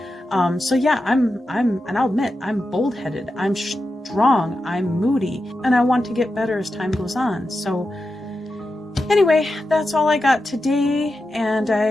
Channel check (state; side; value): normal; both; correlation 0.90